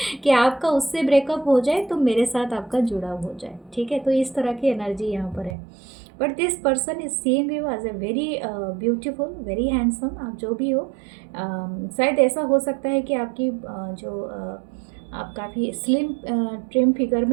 कि आपका उससे ब्रेकअप हो जाए तो मेरे साथ आपका जुड़ाव हो जाए। ठीक है, तो इस तरह की एनर्जी यहाँ पर है। But this person is seeing you as a very beautiful, very handsome, आप जो भी हो। शायद ऐसा हो सकता है कि आपकी आप काफ़ी स्लिम ट्रिम फिगर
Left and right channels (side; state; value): left; drops out; at 5.6 s